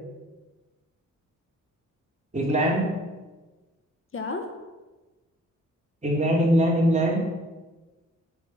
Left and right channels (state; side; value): normal; both; correlation 0.57